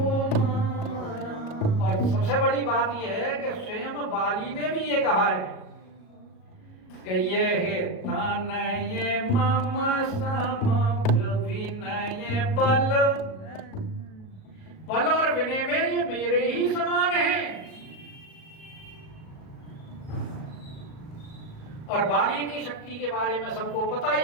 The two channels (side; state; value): right; late; 37 ms